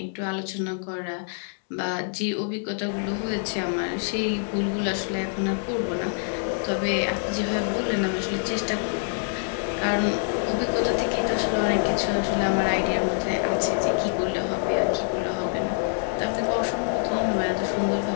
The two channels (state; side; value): silent; right; digital silence